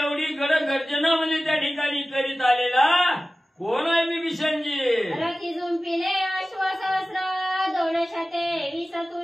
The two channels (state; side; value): normal; both; correlation 0.96